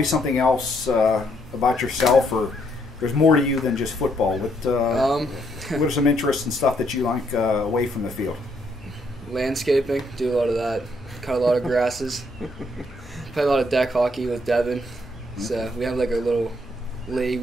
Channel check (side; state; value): both; normal; correlation 0.72